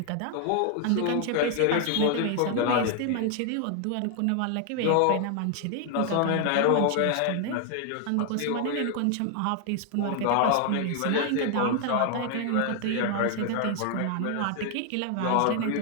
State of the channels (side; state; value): both; different; correlation 0.00